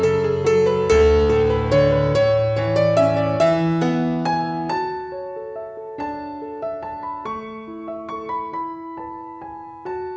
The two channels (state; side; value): identical; both; correlation 1.00